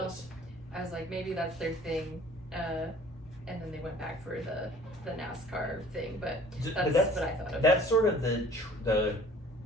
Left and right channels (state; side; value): normal; both; correlation 0.51